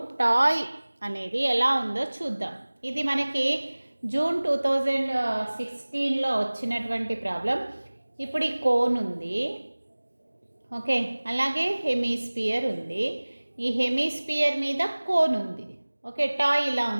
toy అనేది ఎలా ఉందో చూద్దాం. ఇది మనకి June 2016లో వచ్చినటువంటి problem. ఇప్పుడు ఈ కోన్ ఉంది, ఓకే, అలాగే హెమిస్పియర్ ఉంది. ఈ హెమిస్పియర్ మీద కోన్ ఉంది, ఓకే. టాయ్ ఇలా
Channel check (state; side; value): inverted; both; correlation -1.00